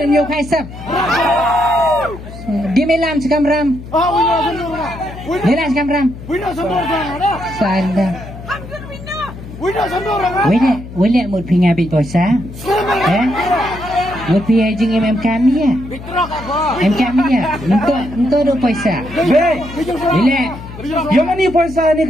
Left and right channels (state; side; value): noise; left; hum, 13 dB below the sound